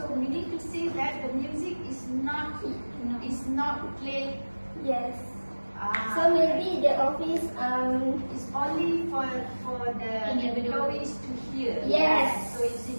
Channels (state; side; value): inverted; both; correlation -1.00